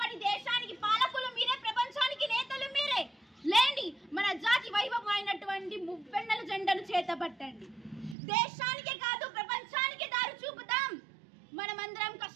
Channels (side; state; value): left; drops out; at 8.2 s